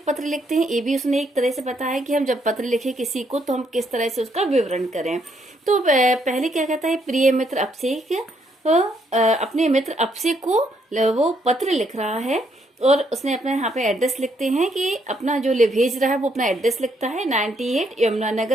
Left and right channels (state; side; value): normal; both; correlation 0.73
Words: लिखते हैं ये भी उसने एक तरह से बताया कि हम जब पत्र लिखे किसी को तो हम किस तरह से उसका विवरण करें। तो पहले क्या कहता है, प्रिय मित्र अभिषेक अपने मित्र अभिषेक को वो पत्र लिख रहा है और उसने अपना यहाँ पे एड्रेस लिखते हैं कि अपना जो भेज रहा है वो अपना एड्रेस लिखता है 98